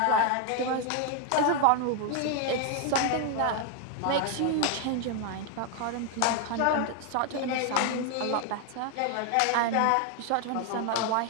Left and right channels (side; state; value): both; different; correlation 0.00